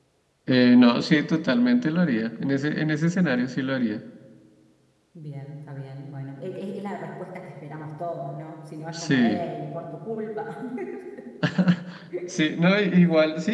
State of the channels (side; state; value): both; identical; correlation 1.00